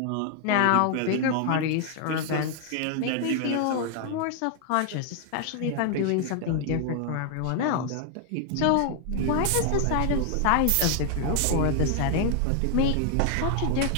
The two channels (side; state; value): both; different; correlation 0.00